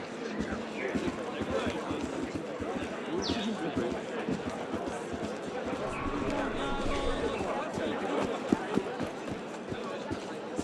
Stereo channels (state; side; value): identical; both; correlation 1.00